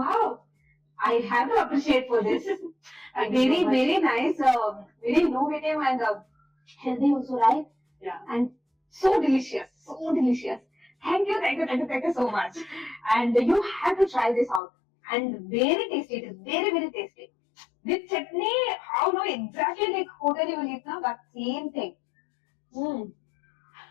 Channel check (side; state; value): right; drops out; at 14.6 s